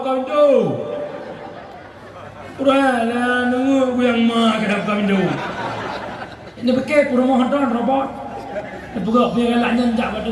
tu. Urala nunggu yang mak kedap kau tu. Ini pakai rumah don robot. Pegak biar galak nyanjak kat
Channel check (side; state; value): both; identical; correlation 1.00